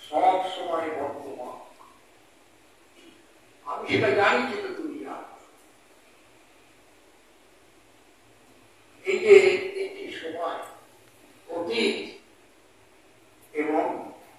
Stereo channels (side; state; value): both; identical; correlation 1.00